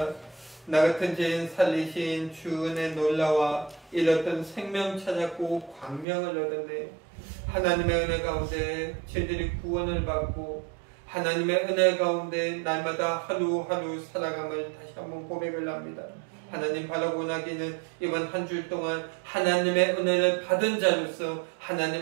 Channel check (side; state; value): left; drops out; at 6.1 s